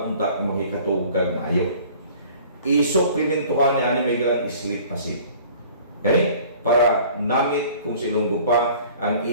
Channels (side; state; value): both; inverted; correlation -0.49